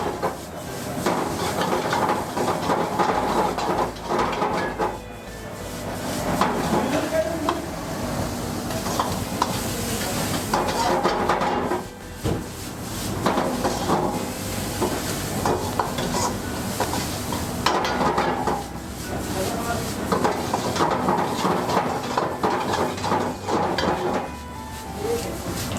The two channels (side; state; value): both; identical; correlation 1.00